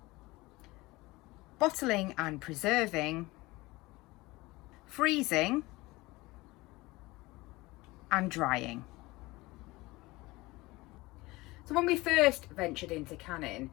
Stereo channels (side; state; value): right; quieter; 21.2 dB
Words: bottling and preserving, freezing, and drying. So when we first ventured into canning,